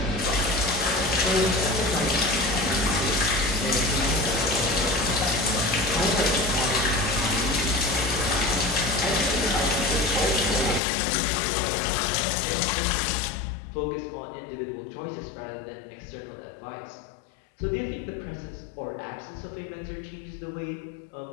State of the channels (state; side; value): drops out; right; at 10.8 s